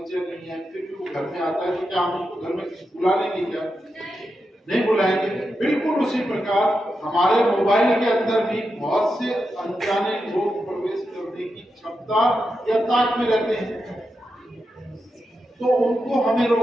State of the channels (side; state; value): both; normal; correlation 0.87